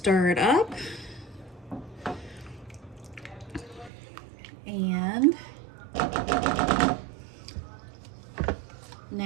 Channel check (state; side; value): drops out; left; at 3.9 s